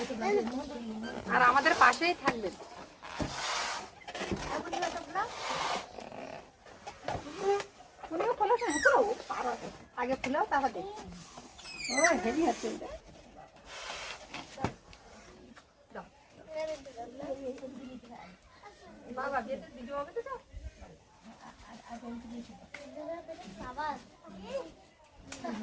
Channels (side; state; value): both; identical; correlation 1.00